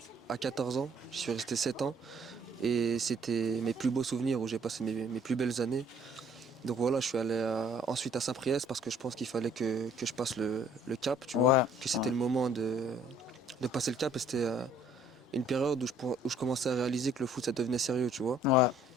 à 14 ans, je suis resté 7 ans. Et c'était mes plus beaux souvenirs où j'ai passé mes plus belles années. Donc voilà, je suis allé ensuite à Saint-Priest parce que je pense qu'il fallait que je passe le cap, tu vois. Que c'était le moment de passer le cap et c'était une période où je commençais à réaliser que le foot ça devenait sérieux, tu vois. Ouais,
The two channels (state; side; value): normal; both; correlation 0.59